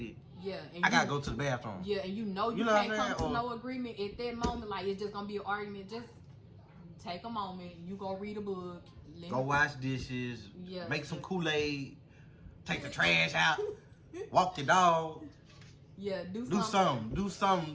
and I gotta go to the bathroom. Yeah, and you can't come to no agreement at that moment. It's just gonna be an argument. Just take a moment. You go read a book. Go wash dishes. Make some Kool-Aid. Take the trash out. Walk your dog. Yeah, do something. Do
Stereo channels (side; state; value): both; identical; correlation 1.00